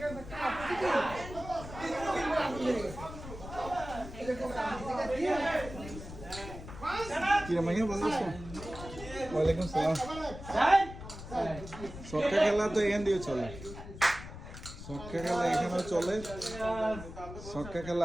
কি মাইয়া ভালো আছো? ওয়ালাইকুম সালাম। সক্কা খেলা তো এখান দিয়ে চলে, সক্কা খেলা এখানেও চলে, সক্কা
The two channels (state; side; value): noise; left; rumble, 12 dB below the sound